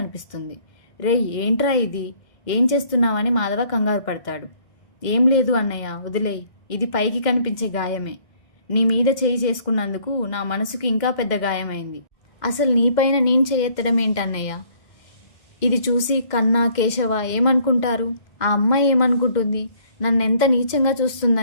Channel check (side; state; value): right; late; 2.1 ms